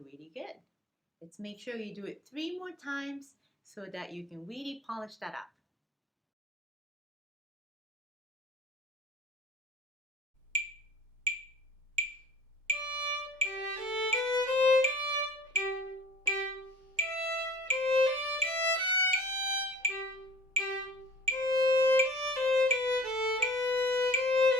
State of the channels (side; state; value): both; normal; correlation 0.46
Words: good. Let's make sure you do it 3 more times so that you can really polish that up.